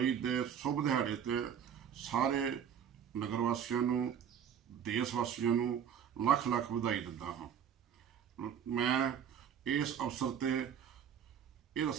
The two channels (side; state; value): left; quieter; 8.4 dB